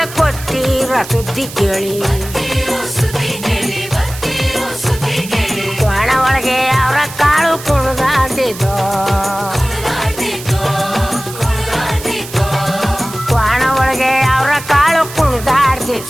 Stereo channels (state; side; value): noise; right; hiss, 13 dB below the sound